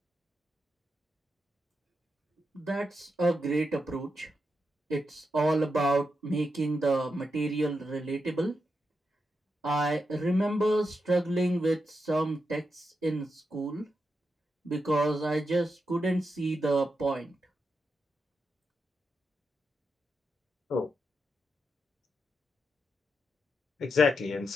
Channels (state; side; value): normal; both; correlation 0.85